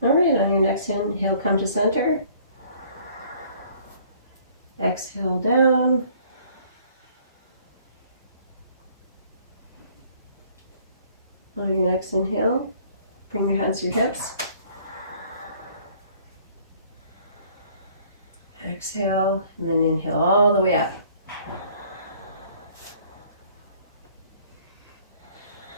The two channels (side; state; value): both; inverted; correlation -0.57